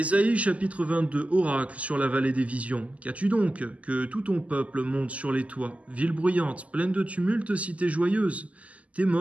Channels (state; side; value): late; left; 0.068 ms